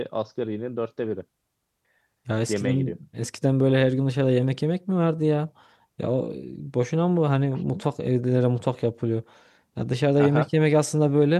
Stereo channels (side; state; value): both; identical; correlation 1.00